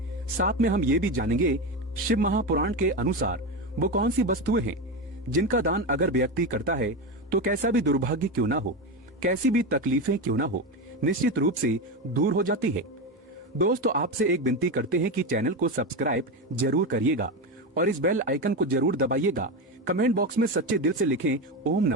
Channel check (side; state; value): both; normal; correlation 0.16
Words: साथ में हम ये भी जानेंगे शिव महापुराण के अनुसार वो कौन सी वस्तुएं हैं जिनका दान अगर व्यक्ति करता है तो कैसा भी दुर्भाग्य क्यों ना हो, कैसी भी तकलीफें क्यों ना हो, निश्चित रूप से दूर हो जाती है। दोस्तों, आपसे एक विनती करते हैं कि चैनल को सब्सक्राइब जरूर करिएगा और इस बेल आइकन को जरूर दबाइएगा। कमेंट बॉक्स में सच्चे दिल से लिखें ओम